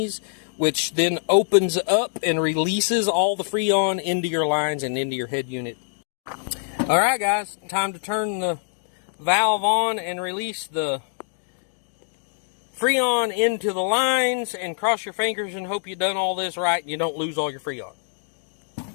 which then opens up and releases all the Freon into your lines and into your head unit. Alright, guys, time to turn the valve on and release the Freon into the lines, and cross your fingers and hope you've done all this right and you don't lose all your Freon.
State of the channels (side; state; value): right; silent; digital silence